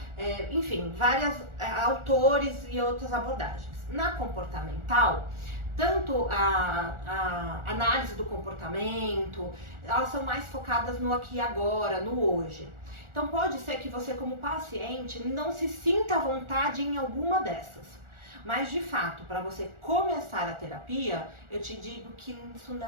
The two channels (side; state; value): left; late; 1.4 ms